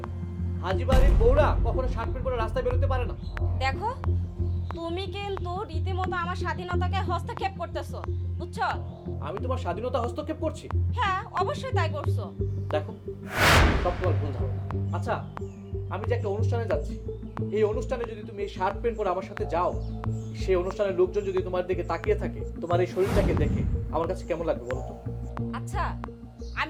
হাজি বাড়ির বউরা কখনো শার্ট প্যান্ট পরে রাস্তায় বেরোতে পারে না। দেখো তুমি কিন্তু রীতিমতো আমার স্বাধীনতাকে হস্তক্ষেপ করতেছো, বুঝছো? আমি তোমার স্বাধীনতা হস্তক্ষেপ করছি? হ্যাঁ অবশ্যই তাই করছো। দেখো সব তোমার ভুল ধারণা। আচ্ছা আমি যে একটা অনুষ্ঠানে যাচ্ছি, এই অনুষ্ঠানে যদি তুমি এই শার্ট প্যান্ট পরে আমার সাথে যাও, সেই অনুষ্ঠানের লোকজন যদি তোমার দিকে তাকিয়ে থাকে, তোমার এই শরীরটাকে দেখে আমার কাছে কেমন লাগবে বলো তো? আচ্ছা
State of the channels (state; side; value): identical; both; correlation 1.00